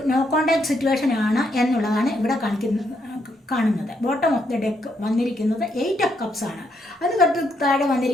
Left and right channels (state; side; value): normal; both; correlation 0.76